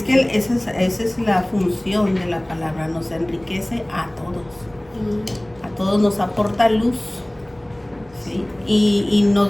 que esa es la función de la palabra, nos enriquece a todos. A todos nos aporta luz, ¿sí? Y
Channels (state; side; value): noise; right; hum, 28 dB below the sound